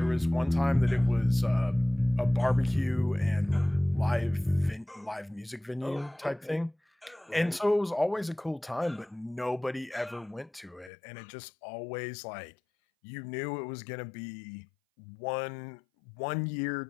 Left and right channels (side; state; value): right; drops out; at 10.9 s